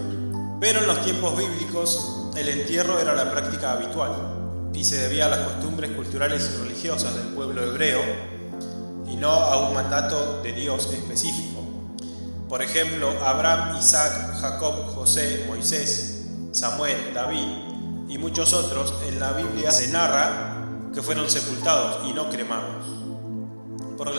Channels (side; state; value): both; inverted; correlation -1.00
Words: pero en los tiempos bíblicos el entierro era la práctica habitual y se debía a las costumbres culturales y religiosas del pueblo hebreo y no a un mandato de Dios específico. Por ejemplo, Abraham, Isaac, Jacob, José, Moisés, Samuel, David y muchos otros en la Biblia se narra que fueron sepultados y no cremados, porque